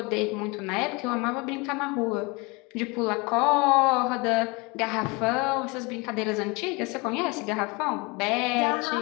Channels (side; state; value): right; quieter; 27.3 dB